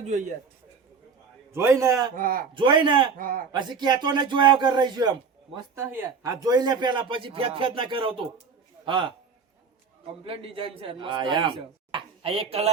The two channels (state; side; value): quieter; left; 5.5 dB